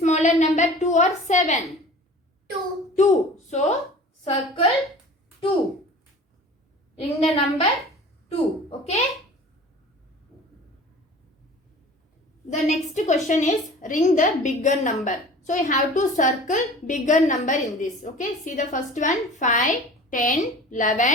number? 2 or 7? 2. 2. So circle 2. Ring the number 2. Okay? The next question is, ring the bigger number. So you have to circle bigger number in this. Okay? See the first one. 5, 10,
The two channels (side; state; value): both; normal; correlation 0.42